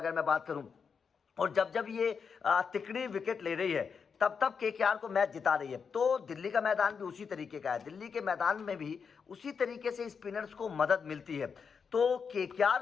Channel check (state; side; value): quieter; right; 6.0 dB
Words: मैं बात करूं, और जब जब ये तिकड़ी विकेट ले रही है तब तब केकेआर को मैच जिता रही है। तो दिल्ली का मैदान भी उसी तरीके का है। दिल्ली के मैदान में भी उसी तरीके से स्पिनर्स को मदद मिलती है। तो केकेआर